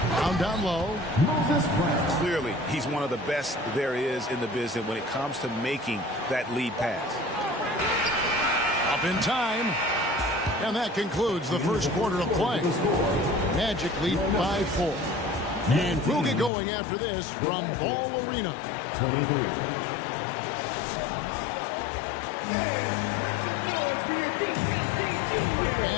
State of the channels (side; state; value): right; drops out; at 16.5 s